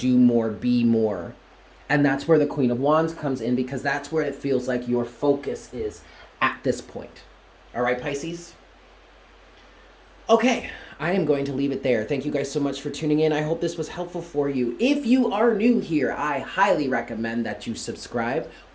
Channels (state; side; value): identical; both; correlation 1.00